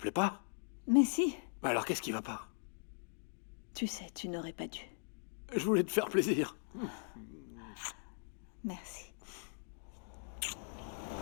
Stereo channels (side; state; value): right; silent; digital silence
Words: pas? Mais si, Alors qu'est-ce qui va pas? tu sais, tu n'aurais pas dû. Je voulais te faire plaisir. Merci.